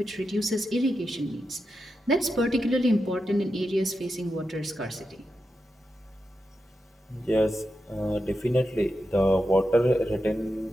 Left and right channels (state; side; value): normal; both; correlation 0.88